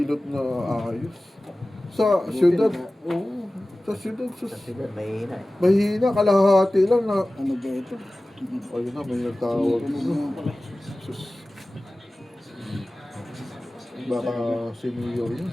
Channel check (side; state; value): both; normal; correlation 0.97